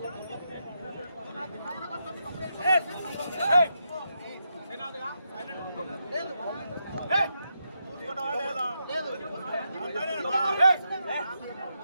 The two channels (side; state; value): both; inverted; correlation -0.83